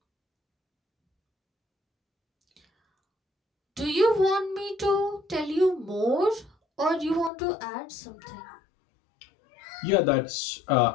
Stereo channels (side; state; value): right; drops out; at 7.3 s